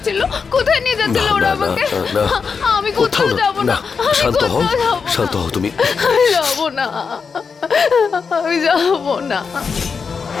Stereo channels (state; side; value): quieter; right; 5.5 dB